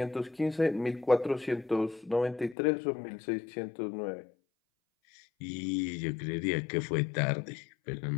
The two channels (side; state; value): right; drops out; at 2.6 s